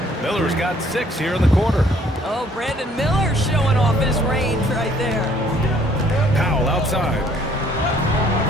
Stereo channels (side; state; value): both; normal; correlation 0.61